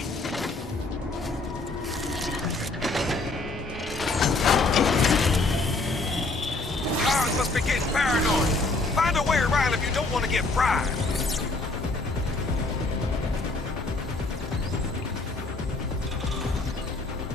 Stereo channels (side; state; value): right; quieter; 3.3 dB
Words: Cars must be getting paranoid. Find a way around if you don't want to get fried.